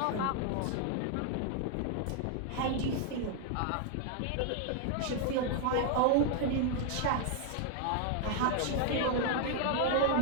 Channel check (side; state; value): both; different; correlation 0.00